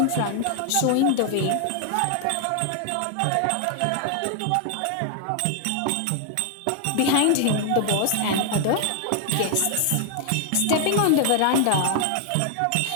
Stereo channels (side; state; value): both; different; correlation 0.00